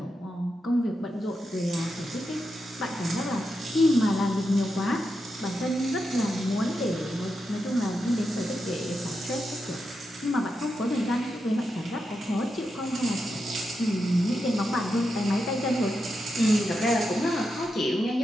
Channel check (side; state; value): both; normal; correlation 0.86